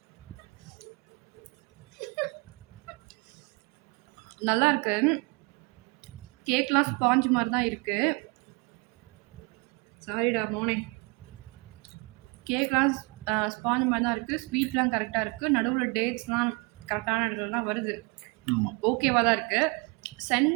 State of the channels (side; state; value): left; quieter; 29.8 dB